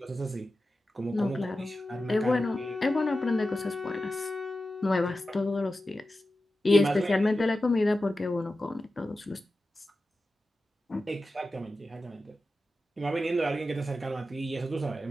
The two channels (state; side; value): normal; both; correlation 0.93